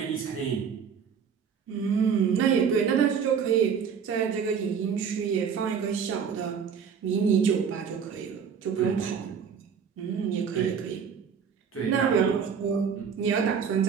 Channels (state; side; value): quieter; left; 6.9 dB